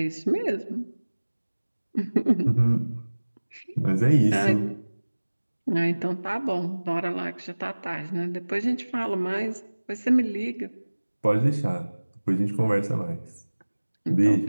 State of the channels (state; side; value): inverted; both; correlation -1.00